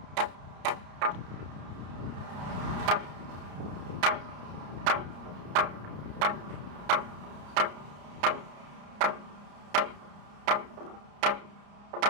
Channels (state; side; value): late; left; 34 ms